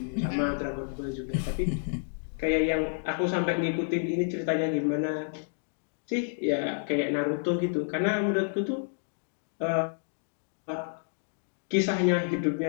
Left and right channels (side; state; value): right; silent; digital silence